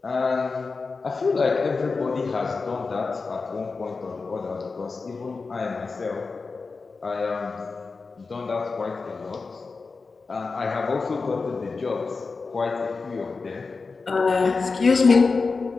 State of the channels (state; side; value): quieter; right; 4.3 dB